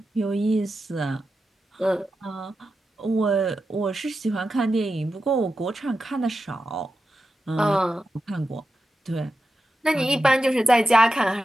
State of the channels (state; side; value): normal; both; correlation 0.90